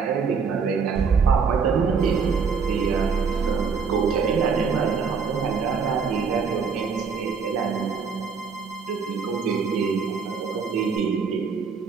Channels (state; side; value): quieter; left; 5.6 dB